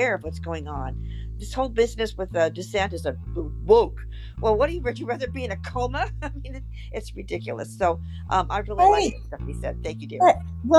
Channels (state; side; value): identical; both; correlation 1.00